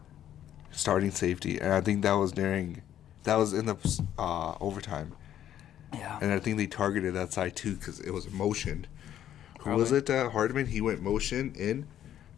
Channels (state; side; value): quieter; right; 11.1 dB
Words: Starting safety, and I think that was in the overtime. Yeah. And I think they targeted that side too because it was motion. Who was it? Hardman. He went motion in,